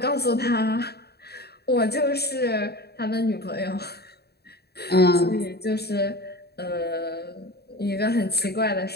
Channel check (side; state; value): right; late; 0.47 ms